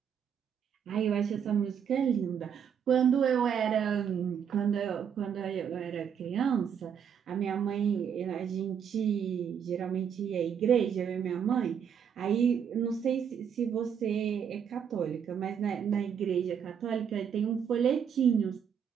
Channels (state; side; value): quieter; left; 7.9 dB